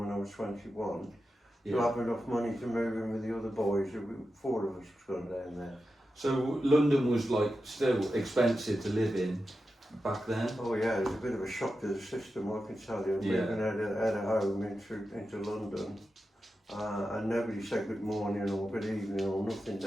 I was 21. Yeah. To have enough money to move in with the other boys. 4 of us was going down there. So London was like still expensive to live in back then? Oh yeah, it was a bit of a shock to the system, I can tell you. Yeah. Moving out of home into London. And nobody said good morning or good evening or nothing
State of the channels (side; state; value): both; normal; correlation 0.91